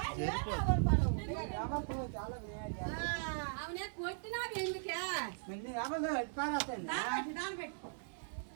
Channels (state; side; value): silent; left; digital silence